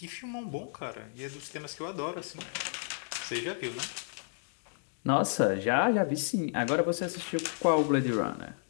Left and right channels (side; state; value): right; silent; digital silence